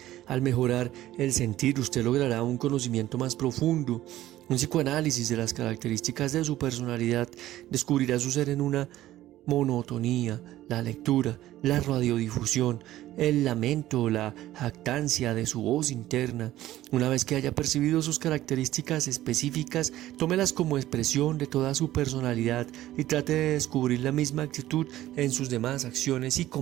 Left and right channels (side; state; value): left; quieter; 14.6 dB